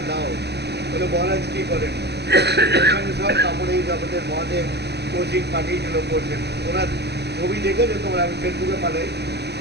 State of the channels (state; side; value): late; left; 0.49 ms